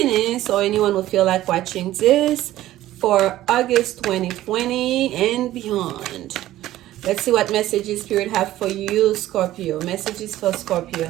or anyone who feel like watching this for August 2020 and beyond. Let's see what messages Spirit have for you, Scorpio. Messages for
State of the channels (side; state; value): left; quieter; 14.6 dB